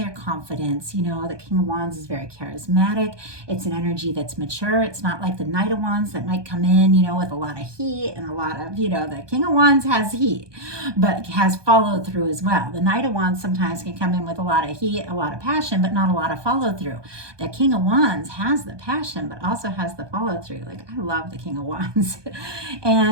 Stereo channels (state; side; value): late; left; 1.2 ms